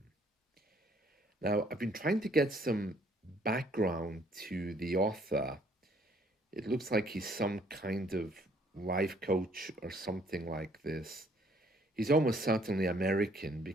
Now, I've been trying to get some background to the author. It looks like he's some kind of life coach or something like this. He's almost certainly American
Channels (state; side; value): normal; both; correlation 0.63